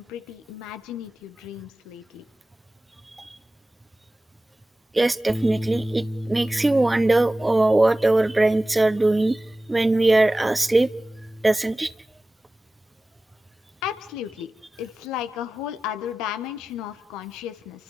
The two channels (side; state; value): both; normal; correlation 0.96